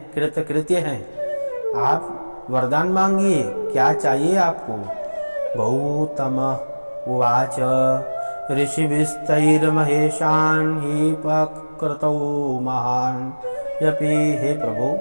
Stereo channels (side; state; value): both; inverted; correlation -1.00